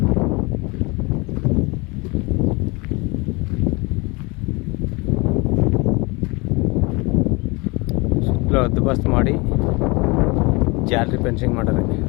ಹದ್ದುಬಸ್ತು ಮಾಡಿ ಜಾಲರಿ ಫೆನ್ಸಿಂಗ್ ಮಾಡೋದು.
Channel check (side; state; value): right; quieter; 26.5 dB